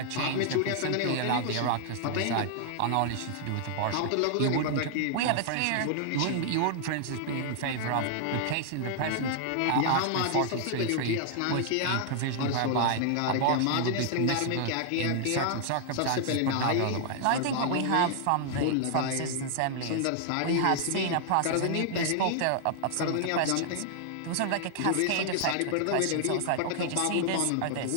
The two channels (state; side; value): different; both; correlation 0.00